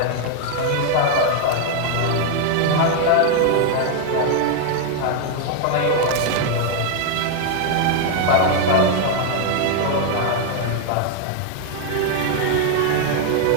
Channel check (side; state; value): both; different; correlation 0.00